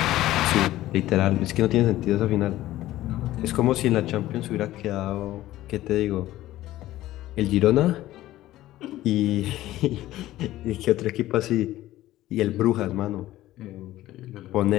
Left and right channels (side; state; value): right; quieter; 15.2 dB